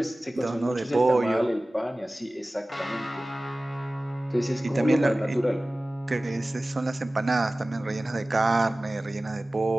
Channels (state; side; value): normal; both; correlation 0.97